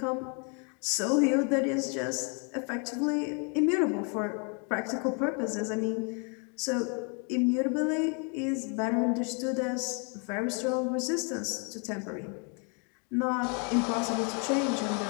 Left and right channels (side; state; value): right; quieter; 36.8 dB